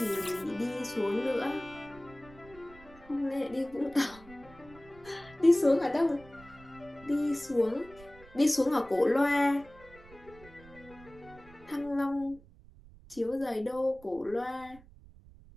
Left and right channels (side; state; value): right; noise; rumble, 22 dB below the sound